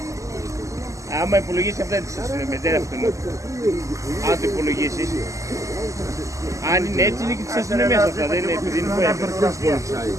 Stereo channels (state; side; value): late; left; 0.16 ms